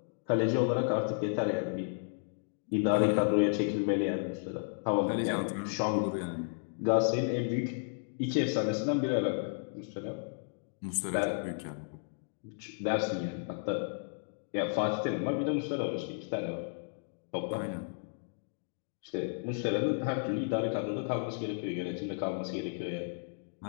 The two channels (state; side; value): silent; right; digital silence